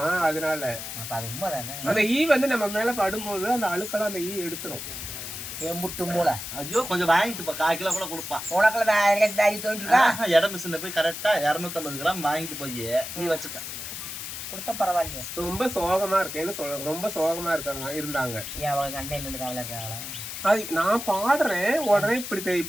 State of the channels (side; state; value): left; noise; hiss, 8 dB below the sound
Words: அதனால அந்த ஈ வந்து நம்ம மேல படும்போது அந்த அழுக்கெல்லாம் அந்த ஈ எடுத்துரும். எம்புட்டு மூளை. ஐயோ கொஞ்சம் வாங்கிட்டு 1/4 கிலோ கூட கொடுப்பான். உனக்கு இடம் மிஷின்ல போய் கரெக்டா 250 கிராம் வாங்கிட்டு போய் நீ வச்சுக்க. கொடுத்தா பரவாயில்ல. ரொம்ப சோகமா இருக்கேன்னு சொல்ல, ரொம்ப சோகமா இருக்காங்க இருந்தாங்க. அவங்க அண்ணன் இருக்காங்களா இருக்காங்களா? அது நான் பாடுறேன் உடனே